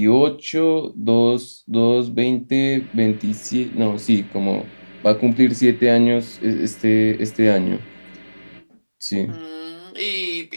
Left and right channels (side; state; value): both; inverted; correlation -1.00